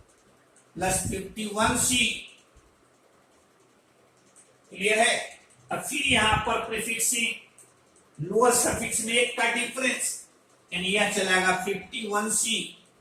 प्लस 51C। क्लियर है। अब फिर यहां पर प्रीफिक्स लोअर सफिक्स में एक का डिफरेंस, यानी यह चलेगा 51C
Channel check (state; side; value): identical; both; correlation 1.00